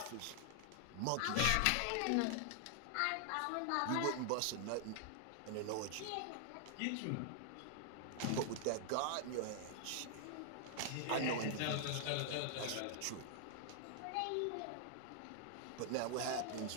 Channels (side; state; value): both; different; correlation 0.00